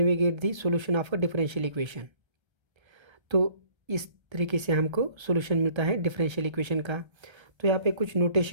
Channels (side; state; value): left; late; 1.3 ms